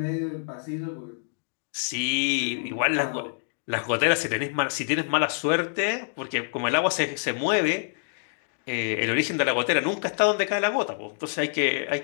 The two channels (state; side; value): silent; right; digital silence